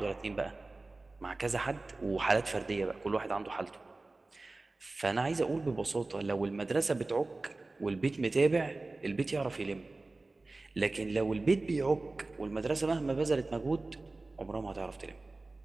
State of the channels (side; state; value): left; quieter; 3.2 dB